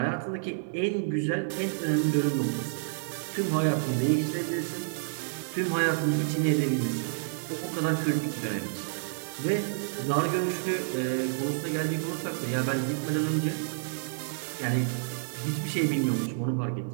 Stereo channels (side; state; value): left; silent; 58 dB below the other